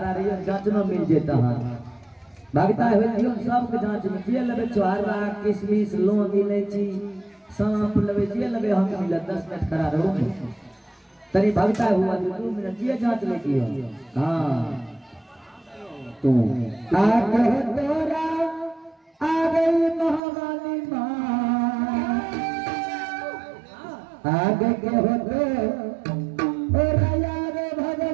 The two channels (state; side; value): drops out; left; at 20.2 s